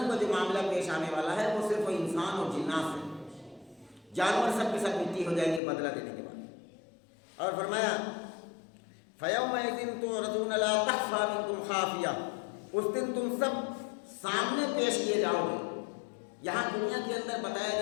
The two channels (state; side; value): drops out; right; at 5.6 s